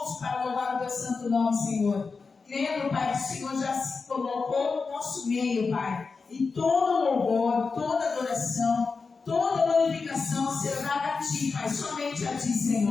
para louvar o teu santo nome, Senhor. Crendo, Pai, que o Senhor já se colocou no nosso meio, Pai. E todo louvor, toda adoração, toda glorificação será dada a Ti, Pai, somente a Ti,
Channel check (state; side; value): quieter; right; 4.6 dB